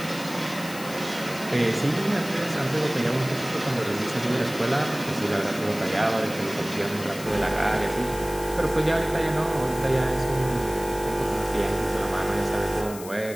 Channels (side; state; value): left; noise; hiss, 14 dB below the sound